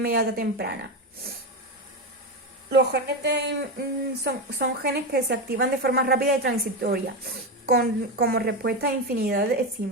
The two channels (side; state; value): both; normal; correlation 0.14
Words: temprana. Los genes son genes que se activan de forma rápida y transitoria, como respuesta a infinidad de